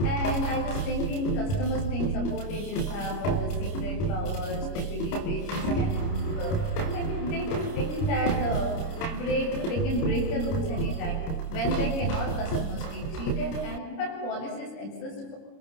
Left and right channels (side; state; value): right; late; 29 ms